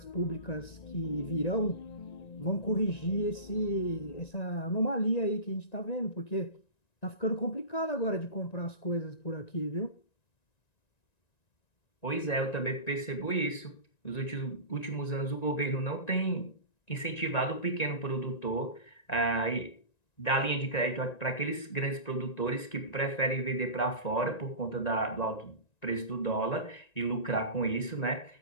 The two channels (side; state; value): right; late; 1.9 ms